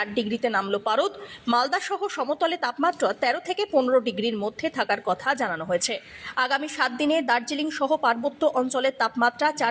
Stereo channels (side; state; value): both; identical; correlation 1.00